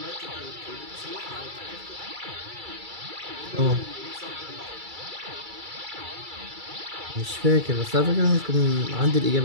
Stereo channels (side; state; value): left; late; 2.3 ms